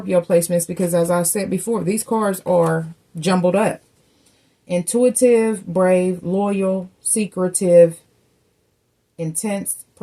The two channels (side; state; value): both; identical; correlation 1.00